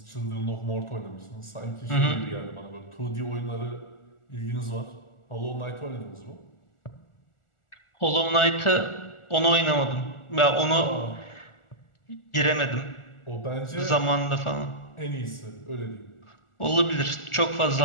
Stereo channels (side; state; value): right; late; 1.4 ms